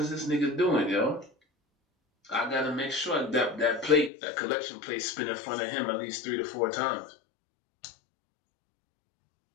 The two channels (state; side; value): drops out; right; at 4.1 s